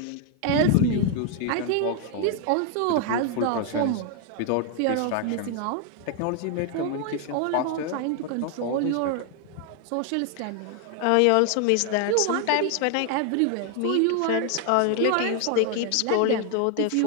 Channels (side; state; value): both; different; correlation 0.00